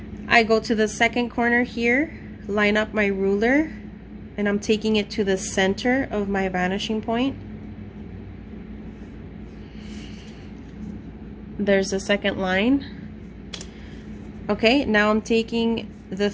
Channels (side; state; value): both; identical; correlation 1.00